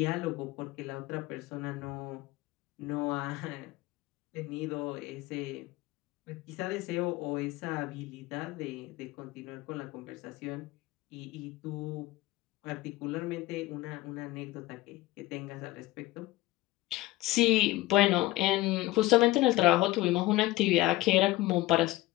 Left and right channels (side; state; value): right; quieter; 17.9 dB